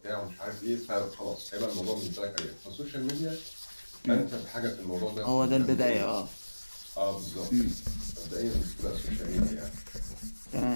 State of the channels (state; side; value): inverted; both; correlation -1.00